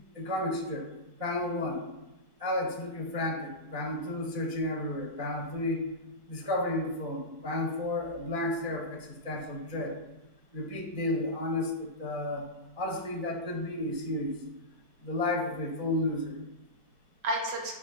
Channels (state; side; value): late; left; 4.6 ms